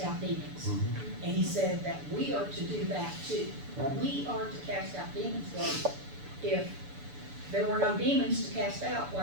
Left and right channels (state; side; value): late; left; 6.9 ms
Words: out demons. Mm-hmm. And he said that we are to do that too. Right. We are to cast out demons, God. If there were no demons to cast out,